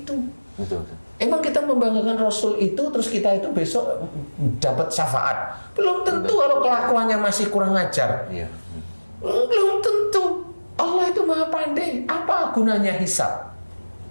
Betul. Emang kita membanggakan Rasul itu, terus kita itu besok dapat syafaat. Belum tentu kalau kelakuannya masih kurang ajar. Iya. Belum tentu. Allah itu maha pandai. Apa gunanya hisab?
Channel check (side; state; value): both; inverted; correlation -1.00